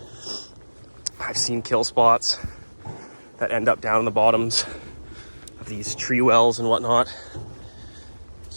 I've seen kill spots that end up down in the bottoms of these tree wells and whatnot.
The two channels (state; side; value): inverted; both; correlation -1.00